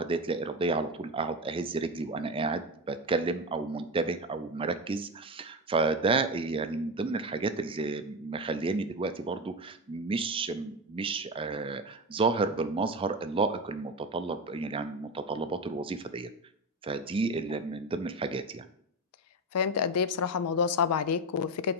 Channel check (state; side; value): normal; both; correlation 0.19